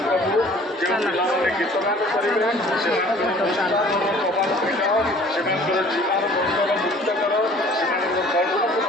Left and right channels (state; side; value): normal; both; correlation 0.51